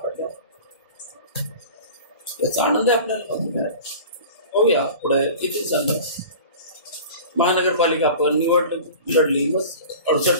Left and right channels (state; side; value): inverted; both; correlation -0.39